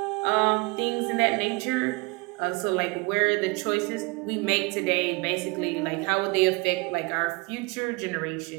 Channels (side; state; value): left; quieter; 26.7 dB